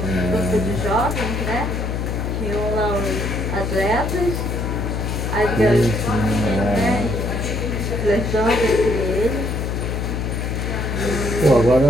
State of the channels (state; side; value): noise; left; hum, 2 dB below the sound